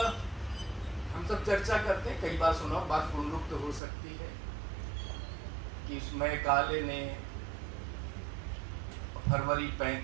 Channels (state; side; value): drops out; left; at 3.8 s